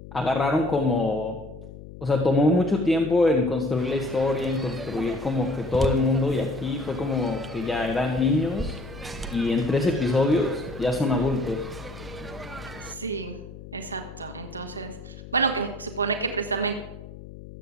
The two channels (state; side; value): noise; left; hum, 15 dB below the sound